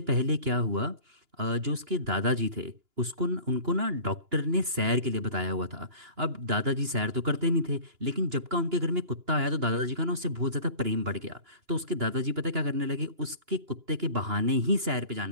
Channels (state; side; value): late; left; 2.9 ms